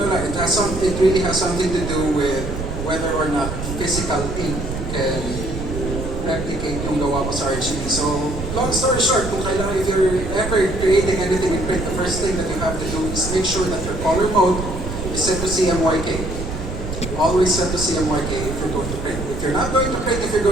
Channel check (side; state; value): right; noise; rumble, 6 dB below the sound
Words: it really has something to do with whether or not physical ink can replicate yung gawa mo sa RGB. So, long story short, kung kailangan, if you're ever creating anything in print, the first thing that you have to do is make sure that your color mode is set to CMYK. Always set to CMYK if you're going to print. If you're not going to print, if you're